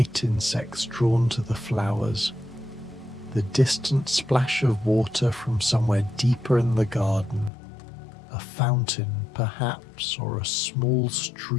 insects drawn to the flowers, the distant splash of water from somewhere deeper in the garden, a fountain perhaps, or a small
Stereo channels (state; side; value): drops out; right; at 7.5 s